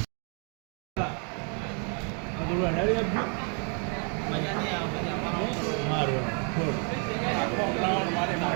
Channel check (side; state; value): left; quieter; 39.1 dB